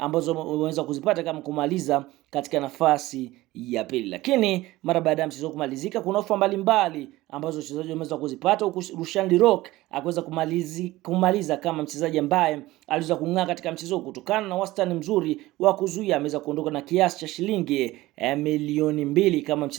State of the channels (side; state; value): left; quieter; 18.0 dB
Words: wameweza kuzipata kama kumaliza katika nafasi ya pili. Lakini mara baada ya mchezo kumalizika kuna ofa mbalimbali ambazo wachezaji wameweza kuzipata, huku Rushan De Reuck akaweza kumaliza kama mchezaji ambaye aliweza kung'aa katika mchezo kutokana na wastani mzuri wa kuzuia. Ameweza kuondoka na kiasi cha shilingi milioni 2 kama